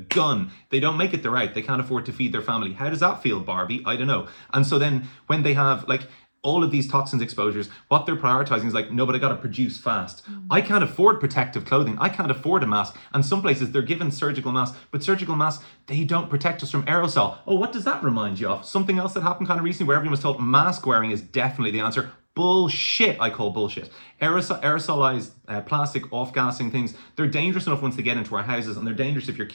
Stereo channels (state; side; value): inverted; both; correlation -1.00